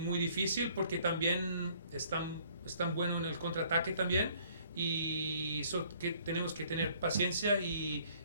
porque también están buenos en el contraataque también, y que tenemos que tener paciencia y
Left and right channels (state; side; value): inverted; both; correlation -0.60